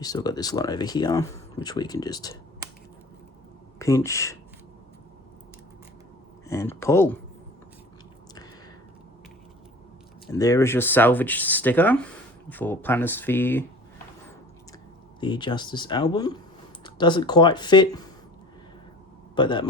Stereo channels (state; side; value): normal; both; correlation 0.42